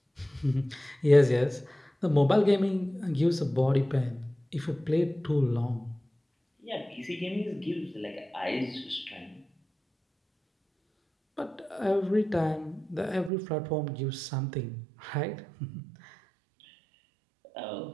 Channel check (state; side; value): drops out; left; at 13.3 s